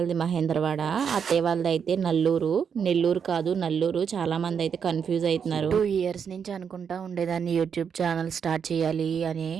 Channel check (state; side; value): quieter; left; 7.1 dB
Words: మహేంద్రవాడ, అత్తయ్య వాళ్ళది అయితే నల్లూరు. నెల్లూరు కాదు, నల్లూరు. చాలా మంది అయితే కన్ఫ్యూజ్ అవుతున్నారు. 2 years నుంచి అనుకుంటా ఉండేదాన్ని యూట్యూబ్ ఛానల్ స్టార్ట్ చేయాలి అని.